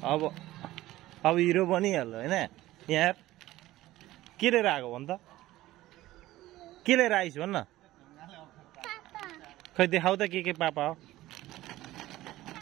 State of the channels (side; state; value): left; quieter; 16.2 dB